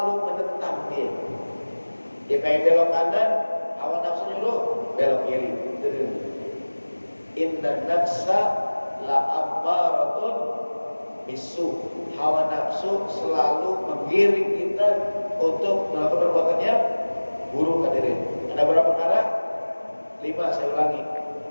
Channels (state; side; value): inverted; both; correlation -1.00